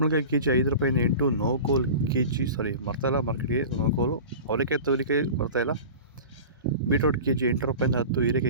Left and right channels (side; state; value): both; inverted; correlation -0.35